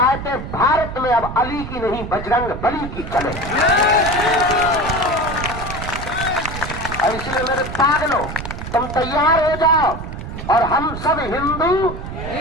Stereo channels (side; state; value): right; noise; rumble, 8 dB below the sound